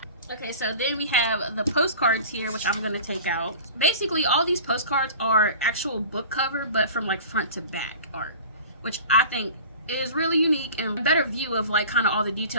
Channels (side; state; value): both; inverted; correlation -0.40